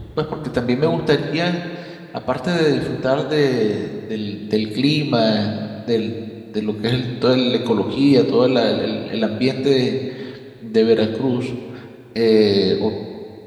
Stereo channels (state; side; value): identical; both; correlation 1.00